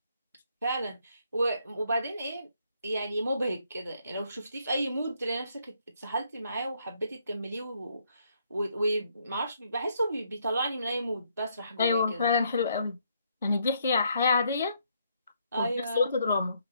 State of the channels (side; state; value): both; inverted; correlation -0.72